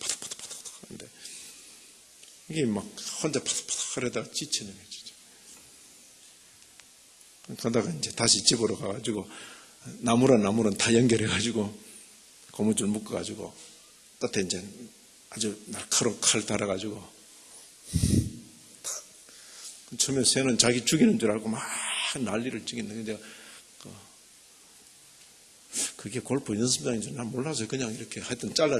하는데 이게 막 혼자 파닥파닥 하려다가 지치는 거죠. 그러다가 이제 다시 집으로 가가지고 나무랑 다 연결해가지고 고무줄 묶어가지고 끝에 이제 아주 날카로운 칼 달아가지고 처음에 새는 자기 죽이는 줄 알고 막 난리를 치겠는데 그게 골프 연습장인 줄 난 몰라서 그냥 이렇게 하여튼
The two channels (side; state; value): both; identical; correlation 1.00